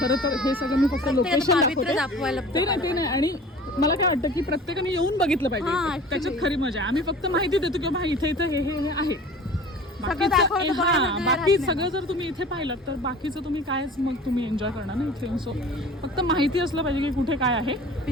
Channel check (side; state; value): both; normal; correlation 0.42